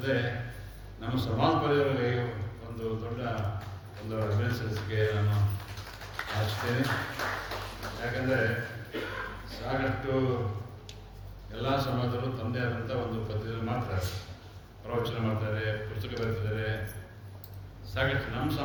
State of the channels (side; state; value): both; identical; correlation 1.00